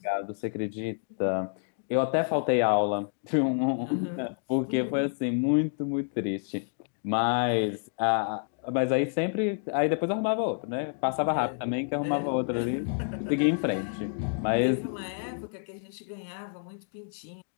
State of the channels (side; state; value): right; silent; digital silence